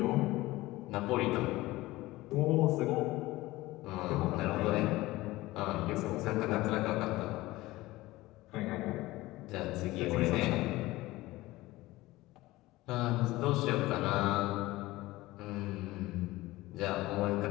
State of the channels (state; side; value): quieter; right; 18.7 dB